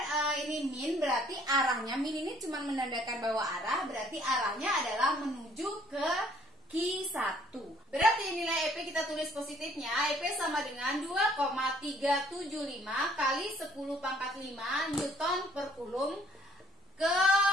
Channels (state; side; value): normal; both; correlation 0.61